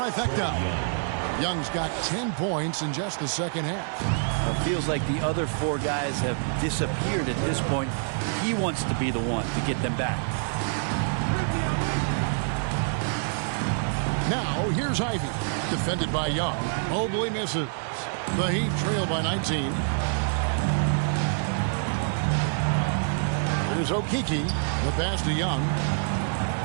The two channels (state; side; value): silent; left; digital silence